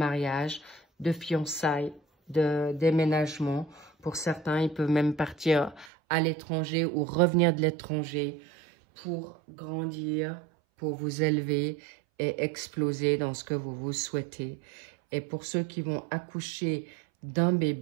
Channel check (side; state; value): left; drops out; at 5.9 s